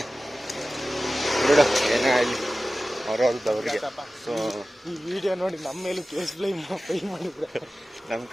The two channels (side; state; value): both; normal; correlation 0.96